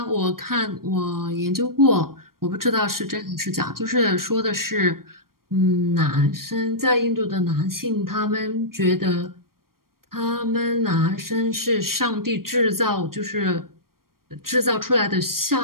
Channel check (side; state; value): left; late; 0.93 ms